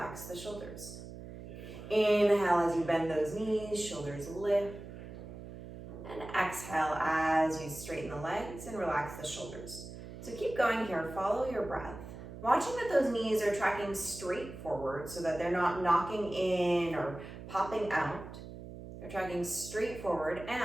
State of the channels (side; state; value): right; noise; hum, 12 dB below the sound